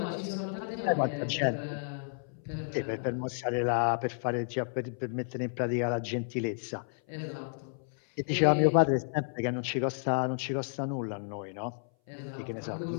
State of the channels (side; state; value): right; silent; 57 dB below the other